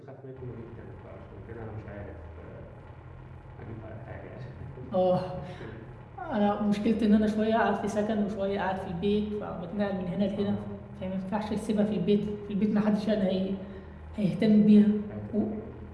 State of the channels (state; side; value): identical; both; correlation 1.00